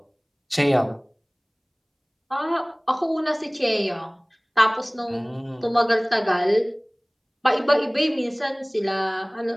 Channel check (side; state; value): both; identical; correlation 1.00